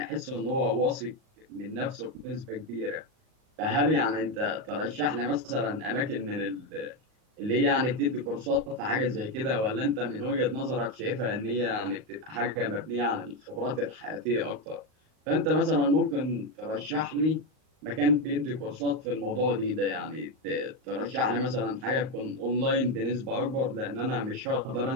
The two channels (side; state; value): left; late; 38 ms